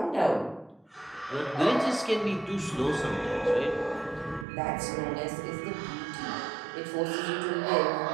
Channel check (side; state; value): left; drops out; at 4.5 s